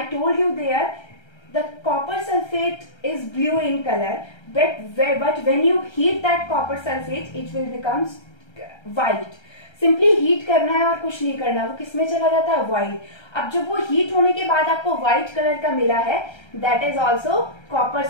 told you there the copper sulphate is blue in colour, but when you heat that copper sulfate it will become white। Simply heat करना है और कुछ नहीं करना, वो किसमें चला जाता है, व्हाइट। अब जब वो हीट होने के बाद आपको व्हाइट कलर का मिला है, that is also copper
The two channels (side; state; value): right; late; 1.3 ms